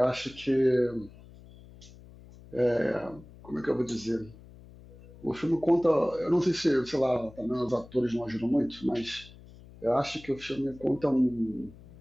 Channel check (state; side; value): noise; left; hum, 20 dB below the sound